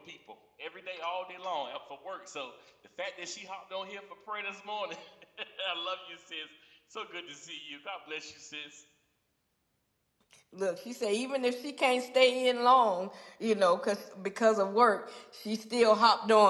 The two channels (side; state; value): both; identical; correlation 1.00